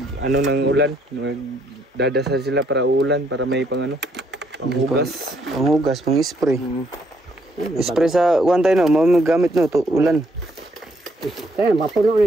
ano ng ulan, magdadasal sila para ulan, para may panghugas. Panghugas, pang-spray. Spray sa wantay no, magamit no to ulan. Kaya mapuno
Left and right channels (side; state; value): both; normal; correlation 0.71